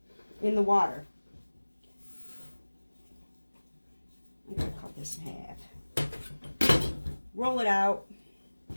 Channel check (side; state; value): both; inverted; correlation -1.00